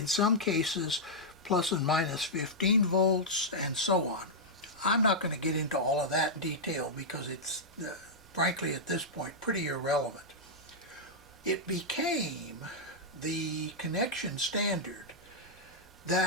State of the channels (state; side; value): normal; both; correlation -0.07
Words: some cases plus and minus 15 volts, and so on. I'm not going to get into all of that in detail because it's, frankly, at this point, pretty irrelevant. It became the connection standard